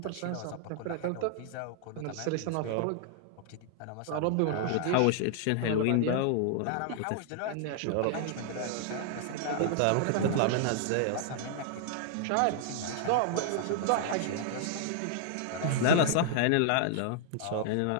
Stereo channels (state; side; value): different; both; correlation -0.01